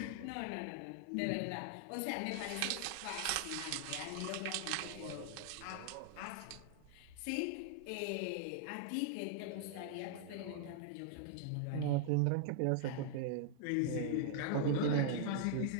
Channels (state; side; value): different; both; correlation -0.01